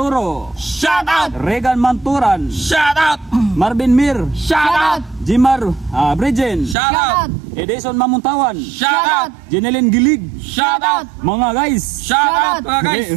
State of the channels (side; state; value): left; drops out; at 6.8 s